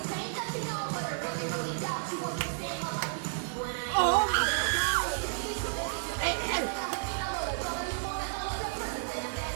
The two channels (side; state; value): left; silent; digital silence